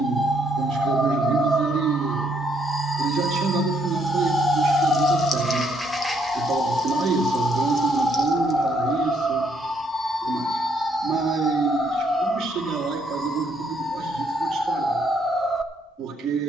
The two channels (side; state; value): both; normal; correlation 0.71